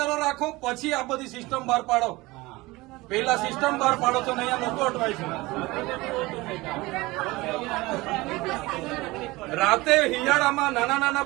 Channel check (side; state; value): left; quieter; 21.3 dB